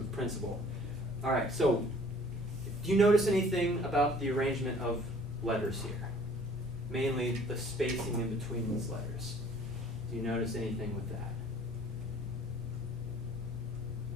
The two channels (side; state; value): both; normal; correlation 0.53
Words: principle. All right, so do you notice anything about the arrangement of letters here? Mainly the spacing in between these letters. Do you notice anything with that?